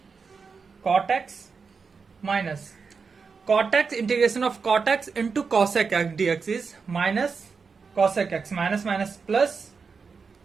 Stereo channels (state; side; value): quieter; left; 5.2 dB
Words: cot x minus cot x integration of cot x into cos x dx is minus cos x minus plus